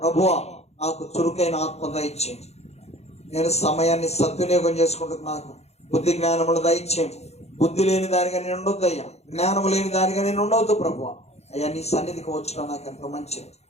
నాకు చురుకైన ఆత్మ దయచేయండి. నేను సమయాన్ని సద్వినియోగం చేసుకుంటూ నాకు బుద్ధి జ్ఞానములు దయచేయండి. బుద్ధి లేని దానిగా నేను ఉండొద్దు అయ్యా, జ్ఞానము లేని దానిగా నేను ఉండవద్దు ప్రభువా. అయ్యా నీ సన్నిధికి వచ్చడం నాకు ఎంతో మంచిది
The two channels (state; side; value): late; right; 0.31 ms